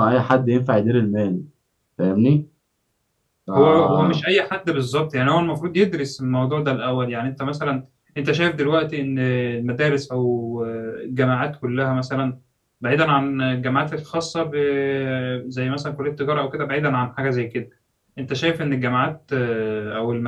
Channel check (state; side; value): identical; both; correlation 1.00